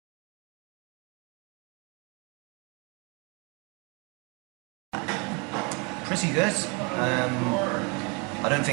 Pretty good. I don't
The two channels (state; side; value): quieter; left; 32.0 dB